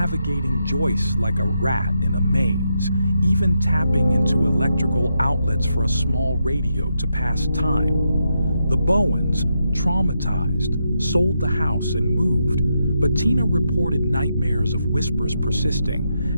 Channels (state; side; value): inverted; both; correlation -0.83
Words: joists like a rat in a maze, even tapping into electrical outlets for a small radio to pass time. The Bowens, traumatized, sold the house and moved, but Tina reported nightmares of whispers persisting,